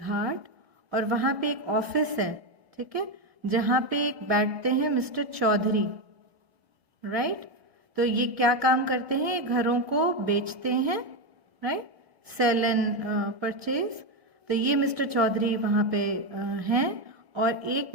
और वहाँ पे एक ऑफिस है, ठीक है, जहाँ पे एक बैठते हैं मिस्टर चौधरी, राइट। तो ये क्या काम करते हैं, ये घरों को बेचते हैं, राइट, सेल एंड परचेज। तो ये मिस्टर चौधरी वहाँ पे हैं और एक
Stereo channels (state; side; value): late; left; 1.8 ms